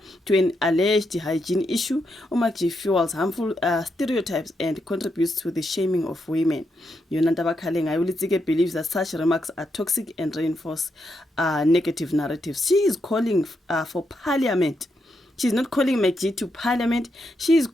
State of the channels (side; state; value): both; normal; correlation 0.82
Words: an alleged hygiene issue. uMacG fuels harmful stereotypes and contributes to the shaming of women. Yonanda Bakalenga uLetsike believes that such remarks are toxic and reinforce negative narratives. She is calling for parliament. She's not calling MacG to parliament. She is